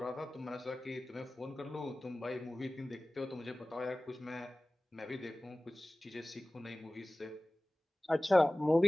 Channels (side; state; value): both; normal; correlation 0.98